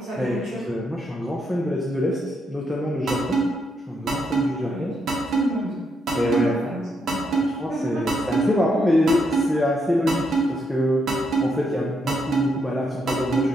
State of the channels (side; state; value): both; normal; correlation 0.78